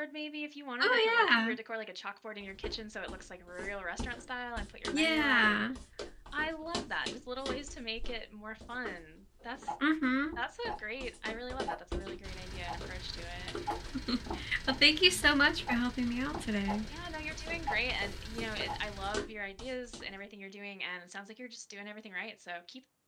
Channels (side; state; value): both; identical; correlation 1.00